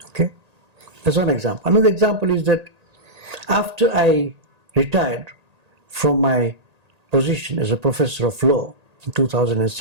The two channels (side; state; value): left; late; 1.8 ms